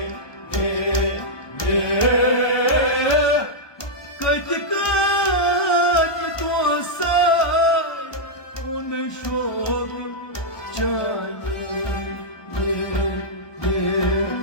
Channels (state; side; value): late; right; 1.2 ms